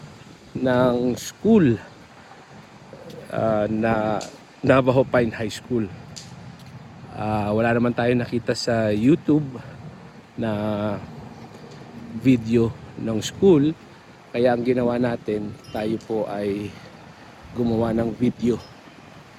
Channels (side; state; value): both; identical; correlation 1.00